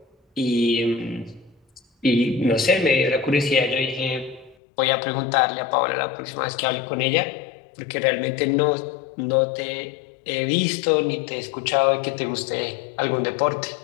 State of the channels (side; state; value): right; drops out; at 4.5 s